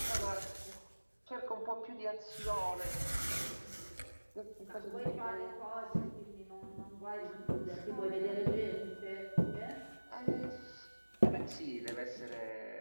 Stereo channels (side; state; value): both; inverted; correlation -1.00